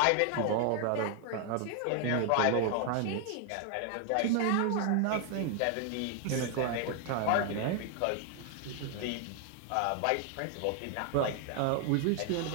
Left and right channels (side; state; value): both; different; correlation 0.00